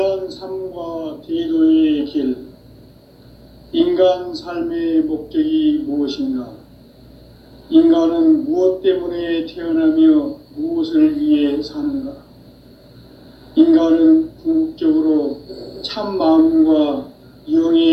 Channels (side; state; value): both; identical; correlation 1.00